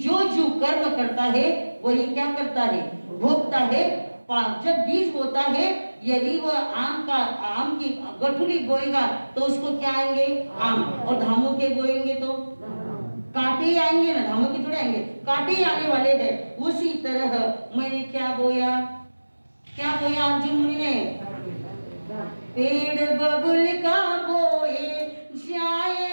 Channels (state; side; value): inverted; both; correlation -1.00